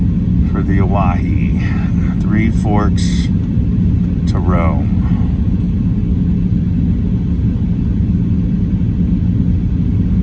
for the Owyhee. 3 Forks to Rome.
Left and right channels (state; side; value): identical; both; correlation 1.00